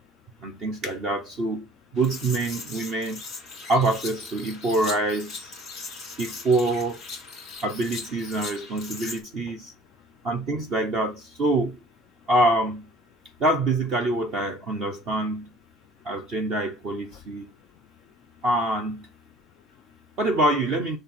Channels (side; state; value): both; normal; correlation 0.51